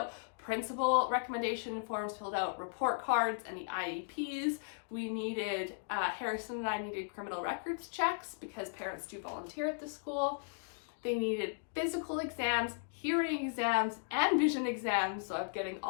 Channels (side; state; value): right; silent; digital silence